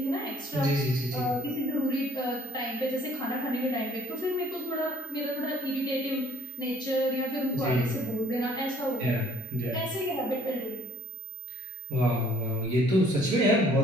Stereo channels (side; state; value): both; normal; correlation 0.55